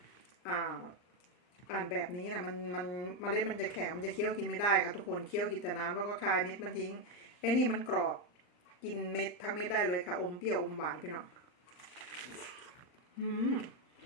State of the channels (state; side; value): late; right; 39 ms